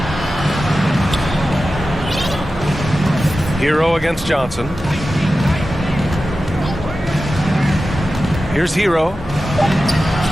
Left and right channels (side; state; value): both; normal; correlation 0.93